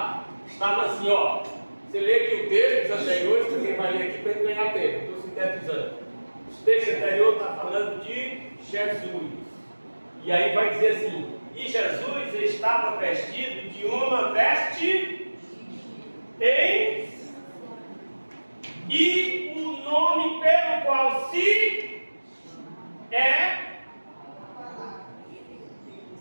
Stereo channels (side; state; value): both; inverted; correlation -1.00